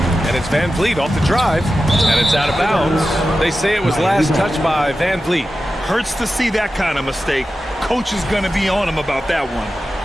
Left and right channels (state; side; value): normal; both; correlation 0.93